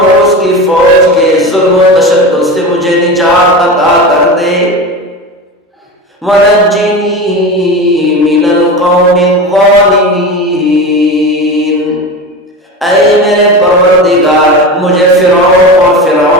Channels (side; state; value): both; normal; correlation 0.26